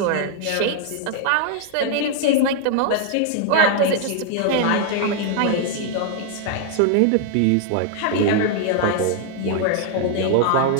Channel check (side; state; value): both; different; correlation 0.00